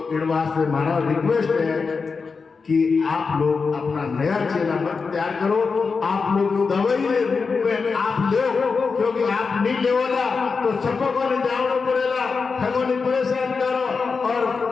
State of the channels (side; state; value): right; quieter; 4.9 dB